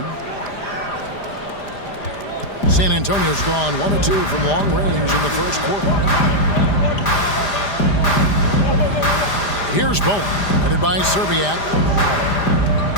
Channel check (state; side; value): late; right; 5.0 ms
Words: San Antonio's gone 1 of 2 from long range in the first quarter. Here's Bowen, headed by Serbiak.